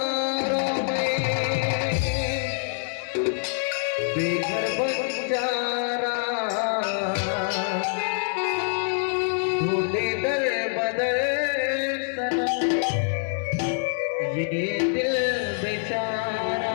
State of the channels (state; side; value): silent; right; 61 dB below the other